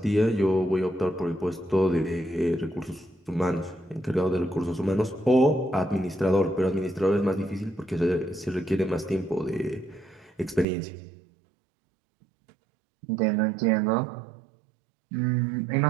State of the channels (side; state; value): left; drops out; at 10.7 s